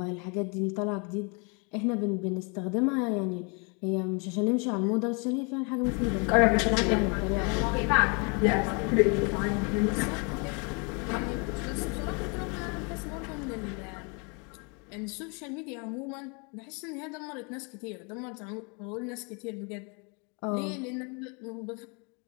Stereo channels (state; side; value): quieter; right; 33.9 dB